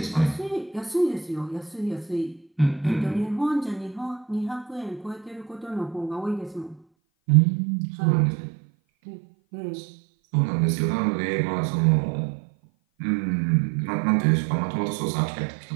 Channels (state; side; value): drops out; left; at 6.8 s